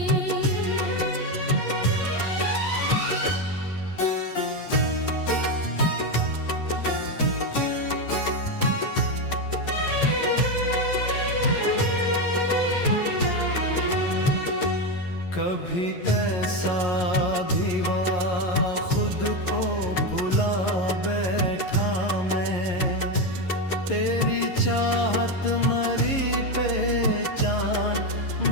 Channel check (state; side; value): late; right; 11 ms